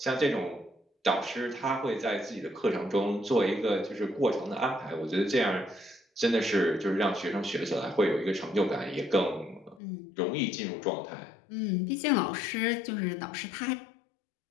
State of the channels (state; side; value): drops out; right; at 9.8 s